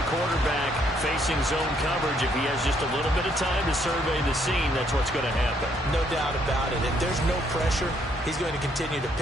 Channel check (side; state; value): both; normal; correlation 0.70